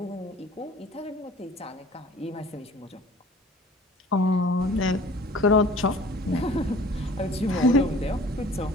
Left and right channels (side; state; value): both; normal; correlation 0.48